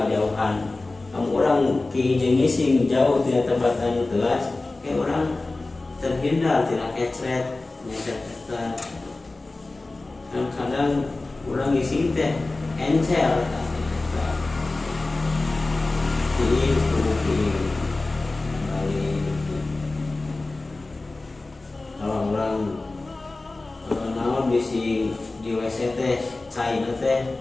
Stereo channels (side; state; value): right; quieter; 3.2 dB